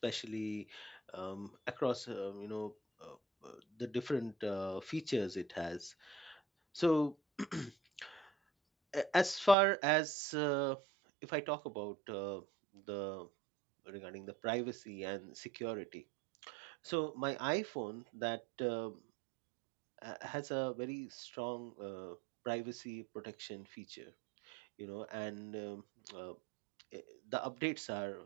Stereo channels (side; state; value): left; drops out; at 9.6 s